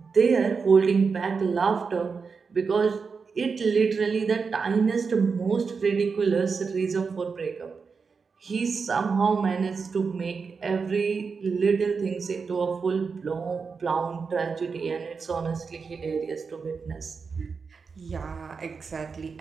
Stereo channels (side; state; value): left; quieter; 5.2 dB